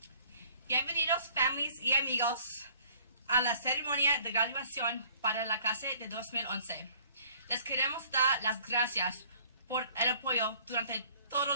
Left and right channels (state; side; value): inverted; both; correlation -0.56